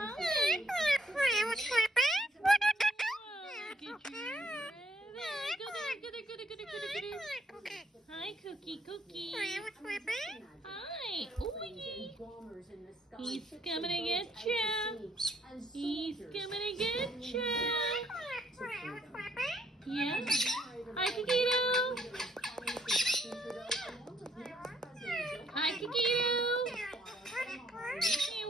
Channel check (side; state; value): both; normal; correlation 0.69